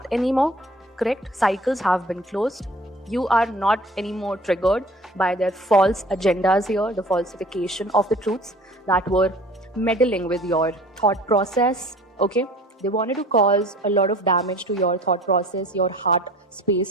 anymore, correct? Cycles have been closed. You are not anymore triggered by their false agendas here, the falsification of the truths that were meddling with your thought process. Okay, they wanted to cause a lot of damage to your thought process, your heart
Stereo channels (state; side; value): normal; both; correlation 0.47